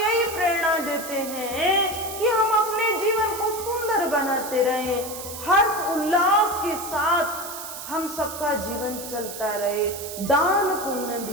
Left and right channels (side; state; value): right; noise; hiss, 10 dB below the sound